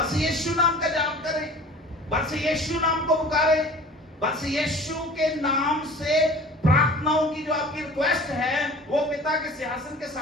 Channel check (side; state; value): both; normal; correlation 0.43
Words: यीशु नाम का जाप करें, बस यीशु नाम को पुकारें, बस यीशु के नाम से प्रार्थनाओं की जो आपकी रिक्वेस्ट है वो पिता के सिंहासन के